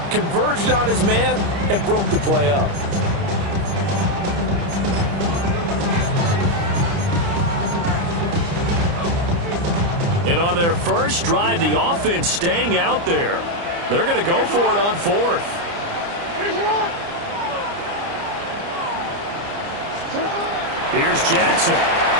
converged on his man, and broke the play up. And on their first drive, the offense staying out there. They're going to go for it on 4th. Here's Jackson.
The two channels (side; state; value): left; late; 29 ms